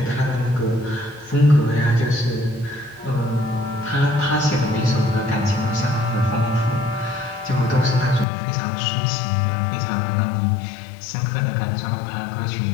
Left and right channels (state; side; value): drops out; right; at 8.2 s